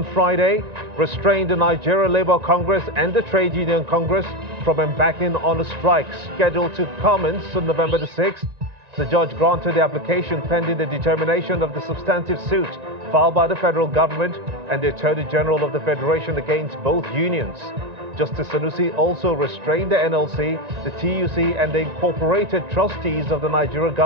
Friday, restrained the Nigeria Labour Congress and the Trade Union Congress from embarking on a strike scheduled to commence on November the 6th. The judge granted the application pending the determination of the substantive suit filed by the federal government and the Attorney General of the Federation against both unions. Justice Sanusi also restrained the NLC, the TUC, and the incorporated trustees of the Nigeria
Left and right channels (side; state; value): left; late; 1.9 ms